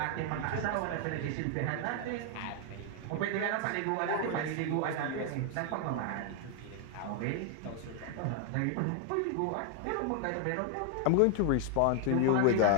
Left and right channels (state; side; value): different; both; correlation 0.00